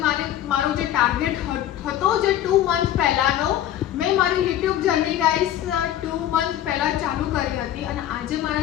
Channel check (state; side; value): quieter; right; 11.8 dB